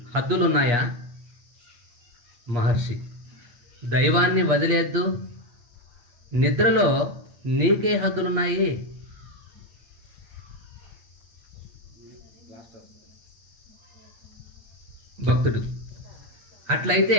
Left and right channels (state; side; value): late; left; 8.4 ms